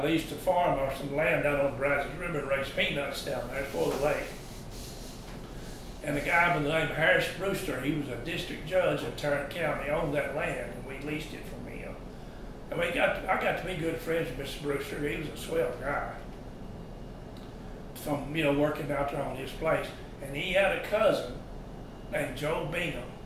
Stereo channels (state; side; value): identical; both; correlation 1.00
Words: leased a farm or some land down on the Brazos River and raised peanuts down there before the lake. And the guy by the name of Harris Brewster, he was a district judge in Tarrant County, owned that land, and we leased it from him. And I got to be good friends with Mr. Brewster. He was a swell guy. From, working out there on his place. And he had a cousin named Joe Bingham.